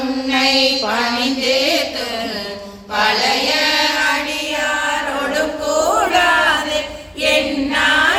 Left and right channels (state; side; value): identical; both; correlation 1.00